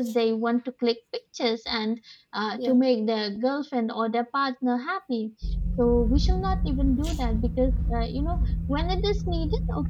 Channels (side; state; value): both; identical; correlation 1.00